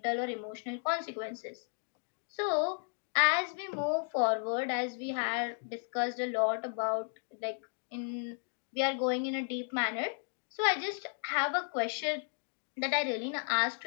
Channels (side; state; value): right; silent; 55 dB below the other